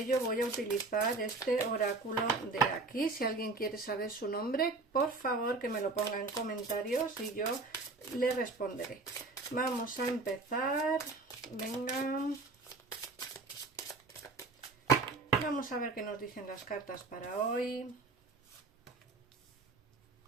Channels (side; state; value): left; quieter; 3.6 dB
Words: voy a utilizar este oráculo de aquí. Si alguien quiere saber su nombre, por favor que me lo ponga en comentarios y yo le responderé. Vamos a empezar. Venga. Vamos a ver qué nos dicen las cartas para hoy.